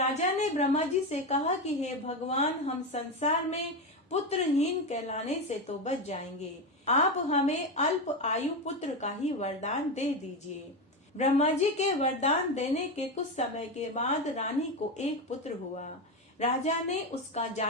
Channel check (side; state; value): both; normal; correlation 0.14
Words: ने ब्रह्मा जी से कहा कि हे भगवान, हम संसार में पुत्रहीन कहलाने से तो बच जाएंगे। आप हमें अल्प आयु पुत्र का ही वरदान दे दीजिए। ब्रह्मा जी के वरदान देने के कुछ समय के बाद रानी को एक पुत्र हुआ। राजा ने उसका